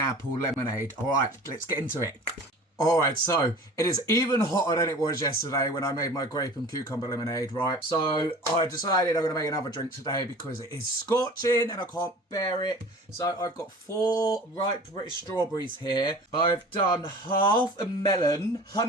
lemonade. Alright, let's get into it. Alright, so it is even hotter than it was yesterday when I made my grape and cucumber lemonade, right? So I decided I'm going to make another drink today because it is scorching and I can't bear it. So I've got 4 ripe British strawberries here. I've done half a melon,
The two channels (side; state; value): both; normal; correlation 0.42